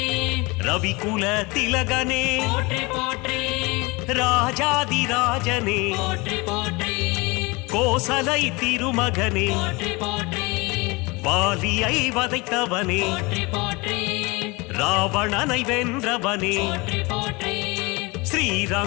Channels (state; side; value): quieter; right; 25.4 dB